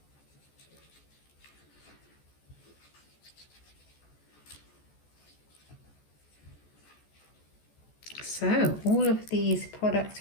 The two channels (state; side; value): late; right; 14 ms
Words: So all of these